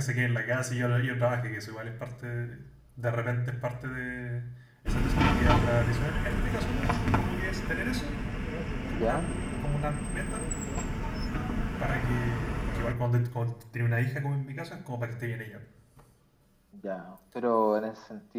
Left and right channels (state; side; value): identical; both; correlation 1.00